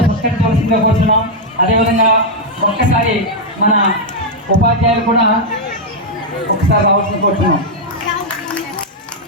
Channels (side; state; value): both; normal; correlation -0.02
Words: సత్కరించవలసిందిగా కోరుతున్నాం. అదేవిధంగా ఒక్కసారి మన ఉపాధ్యాయులు కూడా ఒకసారి రావాల్సింది కోరుతున్నాం.